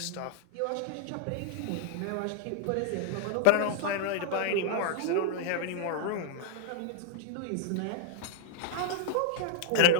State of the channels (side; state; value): both; different; correlation -0.01